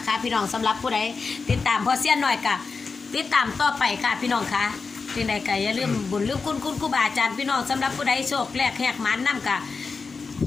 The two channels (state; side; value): quieter; right; 4.6 dB